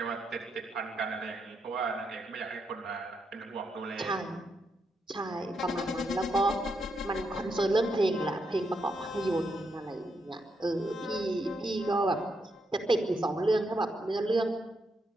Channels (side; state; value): both; normal; correlation 0.81